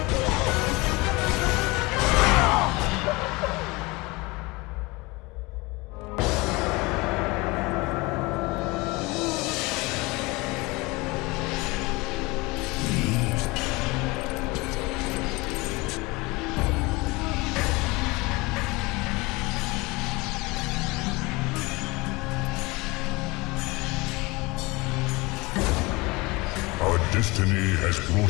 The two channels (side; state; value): right; quieter; 24.0 dB